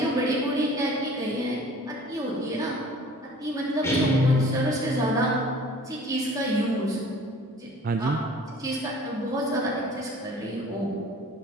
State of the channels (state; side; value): normal; both; correlation 0.48